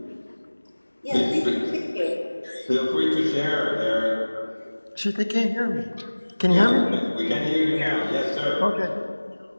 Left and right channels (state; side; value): inverted; both; correlation -1.00